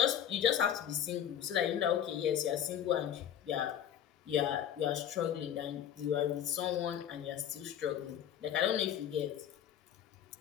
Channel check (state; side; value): quieter; right; 10.0 dB